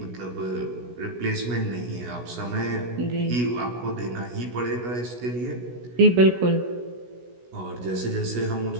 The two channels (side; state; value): left; late; 16 ms